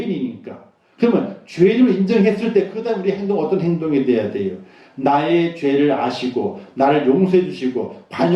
그러면 죄인을 인정했을 때 그 다음 우리 행동 어떤 행동이 돼야 돼요? 나의 죄를 아시고 나를 용서해 주시고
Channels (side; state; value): both; identical; correlation 1.00